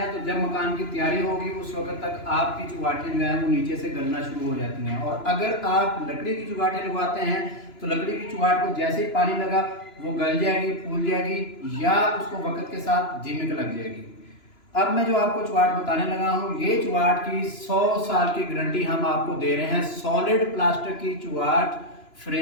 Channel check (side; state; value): right; late; 2.9 ms